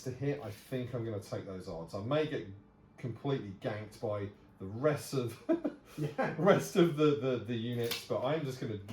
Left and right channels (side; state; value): both; identical; correlation 1.00